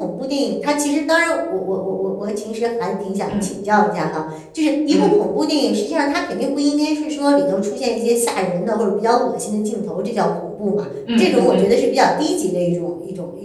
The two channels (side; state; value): both; identical; correlation 1.00